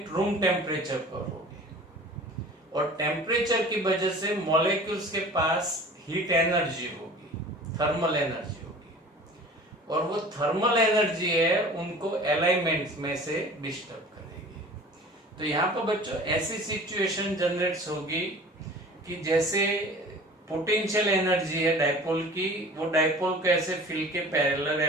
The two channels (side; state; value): both; normal; correlation 0.43